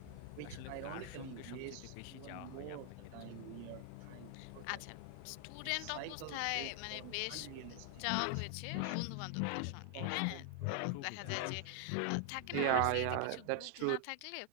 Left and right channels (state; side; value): different; both; correlation 0.00